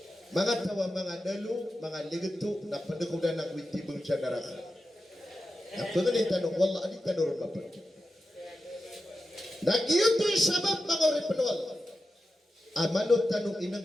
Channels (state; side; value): normal; both; correlation 0.91